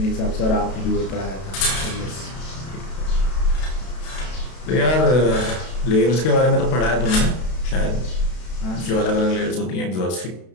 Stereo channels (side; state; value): right; late; 32 ms